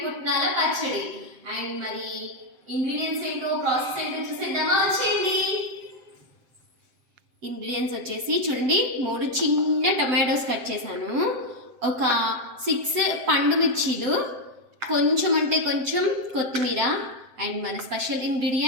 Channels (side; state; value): left; late; 7.6 ms